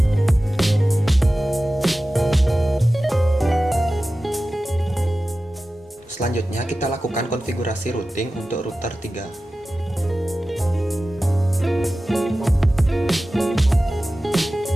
Selanjutnya kita lakukan konfigurasi routing untuk router 3.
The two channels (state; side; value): normal; both; correlation 0.95